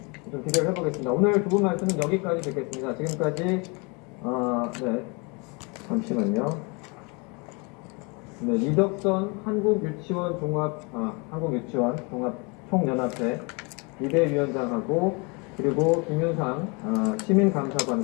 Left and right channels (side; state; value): right; quieter; 30.7 dB